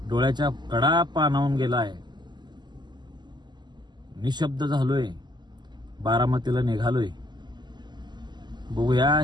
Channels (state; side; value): late; left; 0.21 ms